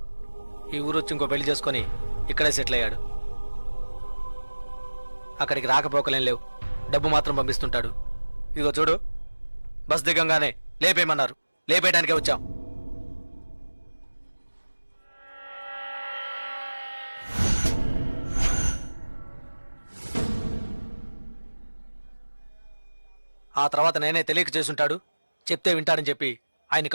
ఈ ఊరు వచ్చి ఇంకో పెళ్లి చేసుకొని ఇక్కడే సెటిల్ అయ్యాడు. అక్కడికి రాకపోకలేం లేవు, డబ్బు మాత్రం పంపిస్తుంటాడు. ఇదిగో చూడు, బస్ దిగంగానే లేపేయమన్నారు, లేపేయడానికే వచ్చాం. ఆ తర్వాత నేనే తెలియక చేసుంటాడు, చెప్తే వింటాడని చెప్పి ఆయన్ని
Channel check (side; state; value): both; inverted; correlation -1.00